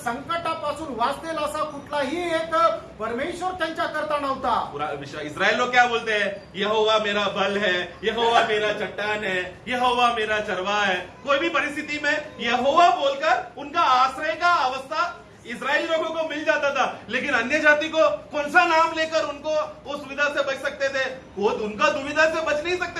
वाचतील असा कुठलाही एक परमेश्वर त्यांच्या करता नव्हता। पूरा इस्राएल लोग क्या बोलते हैं? यहोवा मेरा बल है, यहोवा मेरा चट्टान है, यहोवा मेरा चरवाहा है। कोई भी परिस्थिति में यहोवा बोलकर उनका आश्रय का अवस्था इस्राएली लोगों को मिल जाता था। लेकिन अन्य जाति को कौन सा नाम लेकर उनको उस सुविधा से बच सकते थे? वो उनका दुविधा से बच नहीं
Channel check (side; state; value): both; identical; correlation 1.00